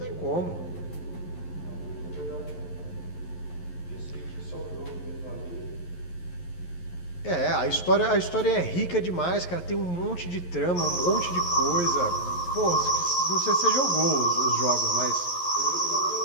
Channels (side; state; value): right; late; 11 ms